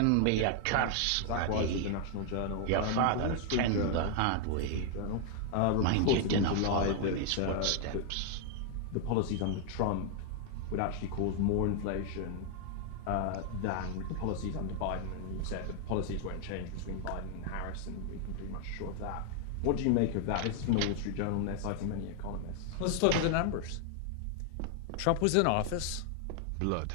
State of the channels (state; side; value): different; both; correlation 0.00